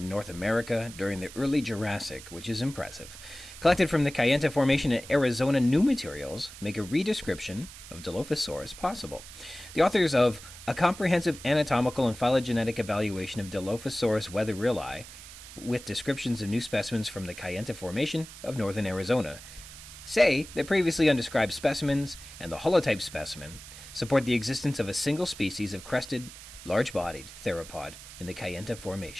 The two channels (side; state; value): right; noise; hiss, 15 dB below the sound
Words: North America during the early Jurassic, which is impressive. Collected from the Kayenta Formation in Arizona, new materials make a redescription of Dilophosaurus possible. The authors of A Comprehensive Anatomical and Phylogenetic Evaluation of Dilophosaurus wetherilli, with descriptions of new specimens from the Kayenta Formation of northern Arizona, say that previously undescribed specimens and the holotype specimen support the existence of a single species of crested, large-bodied theropod in the Kayenta